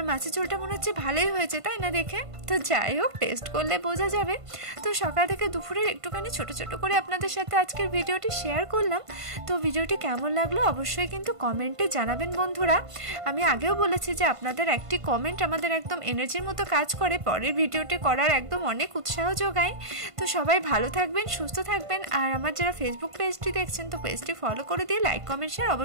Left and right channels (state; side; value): late; left; 1.5 ms